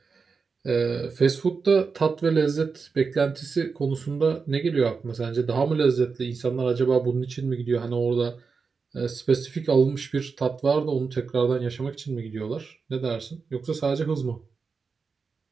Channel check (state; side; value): quieter; left; 5.0 dB